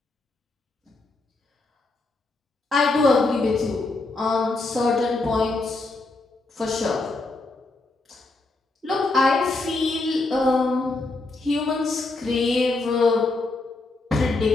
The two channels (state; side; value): quieter; right; 3.3 dB